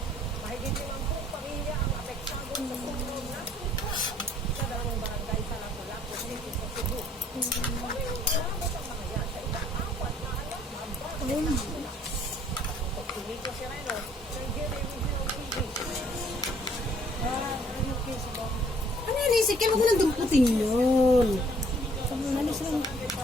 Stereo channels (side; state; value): both; normal; correlation 0.61